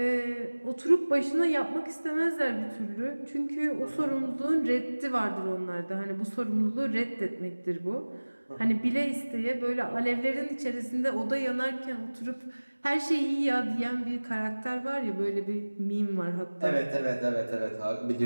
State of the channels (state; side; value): inverted; both; correlation -1.00